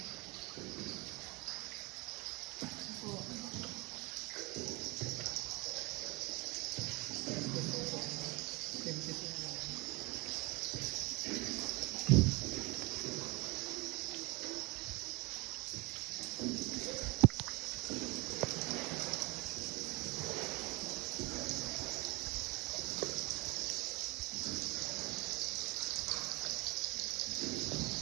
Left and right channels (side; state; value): left; quieter; 25.4 dB